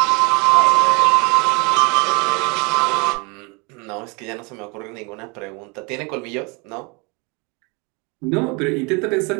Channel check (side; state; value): left; quieter; 29.8 dB